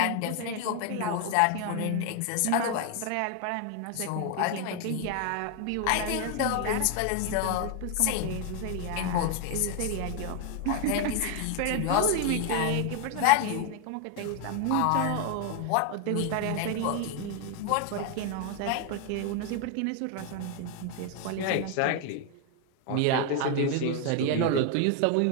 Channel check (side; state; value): both; different; correlation 0.01